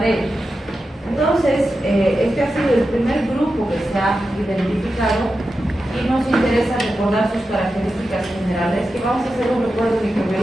Entonces, este ha sido el primer grupo que se ha identificado y nos interesa recordar sus características generales, que vamos a hacer un recuerdo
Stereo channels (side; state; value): both; normal; correlation 0.91